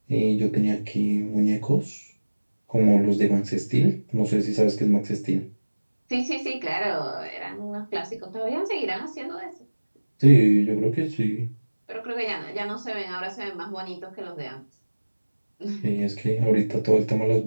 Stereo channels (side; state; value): both; inverted; correlation -1.00